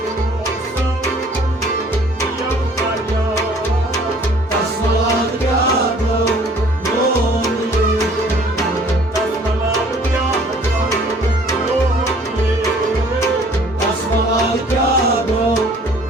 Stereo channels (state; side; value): normal; both; correlation 0.55